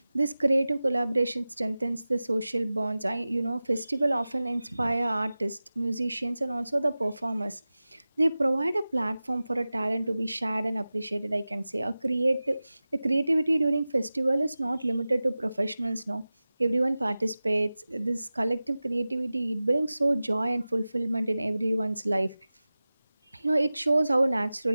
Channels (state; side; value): inverted; both; correlation -0.96